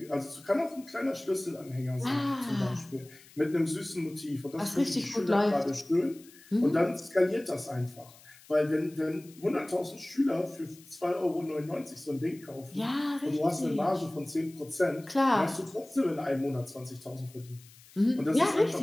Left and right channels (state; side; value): noise; left; hiss, 23 dB below the sound